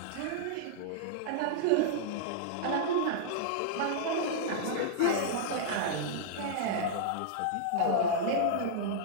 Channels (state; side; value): different; both; correlation -0.02